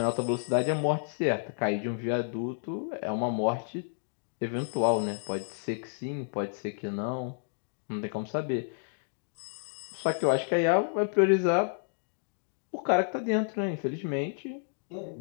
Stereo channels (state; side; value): silent; right; digital silence